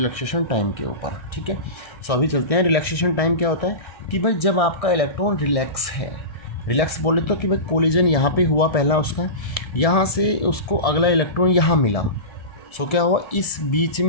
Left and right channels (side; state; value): right; late; 1.7 ms